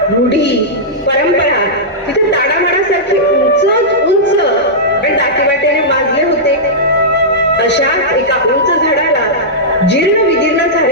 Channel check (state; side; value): normal; both; correlation -0.12